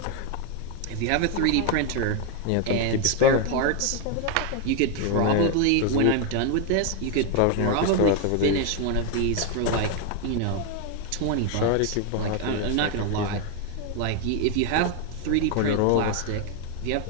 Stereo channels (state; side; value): different; both; correlation 0.01